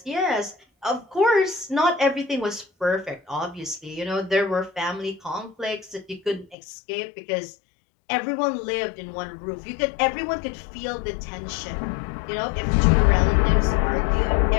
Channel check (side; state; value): right; drops out; at 6.6 s